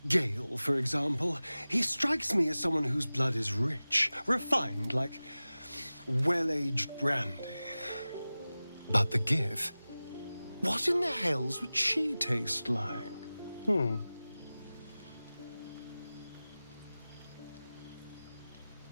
Gale, for example. He strikes me as someone whose blood is rich, refined, like well-aged brandy. But the Gith, what in the hells would she taste like?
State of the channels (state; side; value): inverted; both; correlation -0.97